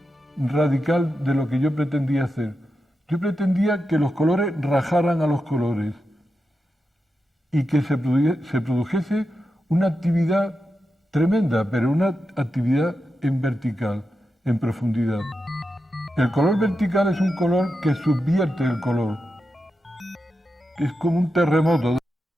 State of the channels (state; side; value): normal; both; correlation 0.89